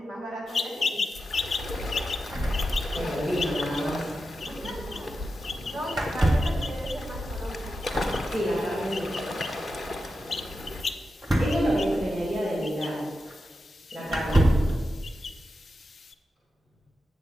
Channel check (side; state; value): both; normal; correlation 0.90